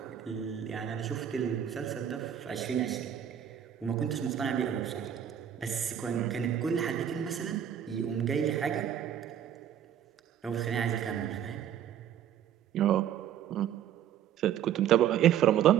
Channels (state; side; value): quieter; left; 9.9 dB